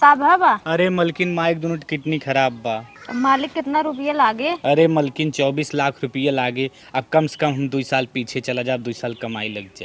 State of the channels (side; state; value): both; identical; correlation 1.00